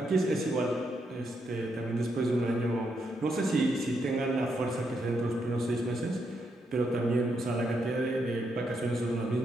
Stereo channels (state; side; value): normal; both; correlation 0.79